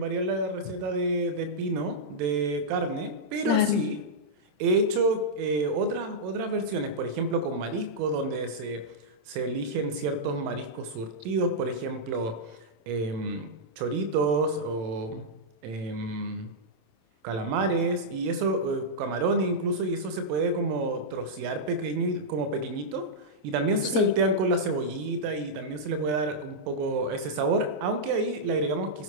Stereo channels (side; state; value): left; late; 27 ms